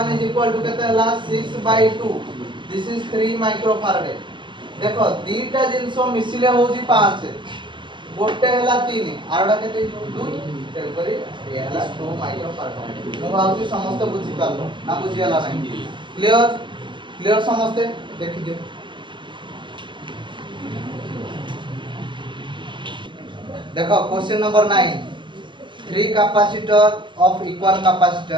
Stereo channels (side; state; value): left; late; 0.23 ms